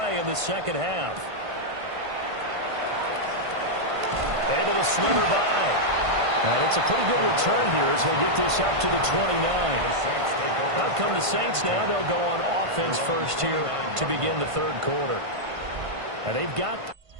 in the second half. Able to slither by. And it's a pretty good return here as he'll get this up to the 29. Out come the Saints now. They'll go on offense first here to begin the third quarter. And they've got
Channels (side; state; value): left; late; 1.5 ms